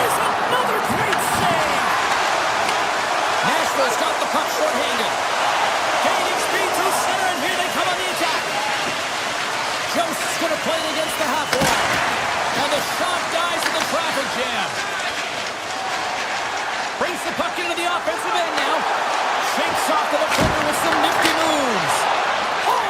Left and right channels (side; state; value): both; identical; correlation 1.00